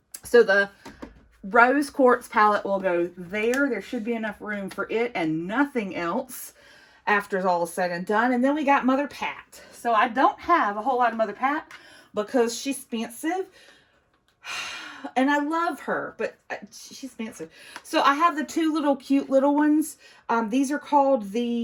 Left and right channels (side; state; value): both; identical; correlation 1.00